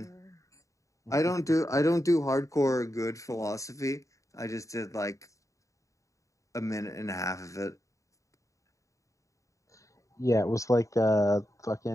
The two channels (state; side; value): late; right; 0.16 ms